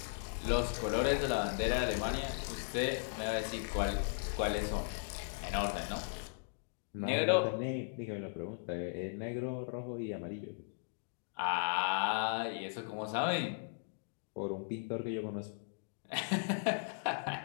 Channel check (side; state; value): right; silent; digital silence